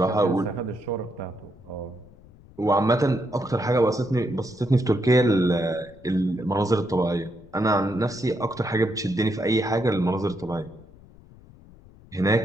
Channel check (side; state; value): left; noise; rumble, 23 dB below the sound